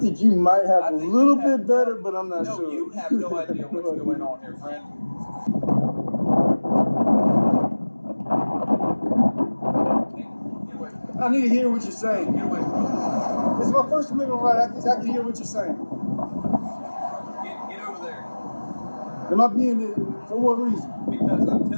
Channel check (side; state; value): both; inverted; correlation -1.00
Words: think you might have I a think little you have bit better, but I'm not no, sure. you have no idea what's going on here, friend. Get away from me. I need to hear what you're saying. Get away from me. It's my First Amendment right. I can hear what you're saying. Get over there. Am I being for what reason? Because I'm